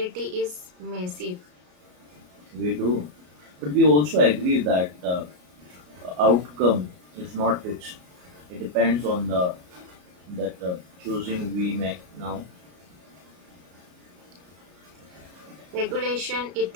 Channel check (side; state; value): left; late; 33 ms